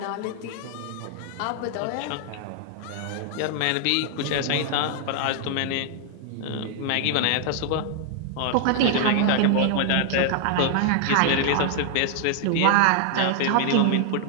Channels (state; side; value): different; both; correlation 0.00